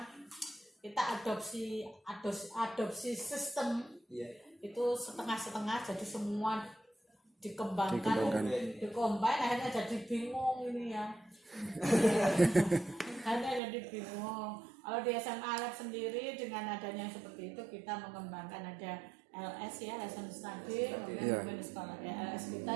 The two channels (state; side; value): drops out; left; at 13.6 s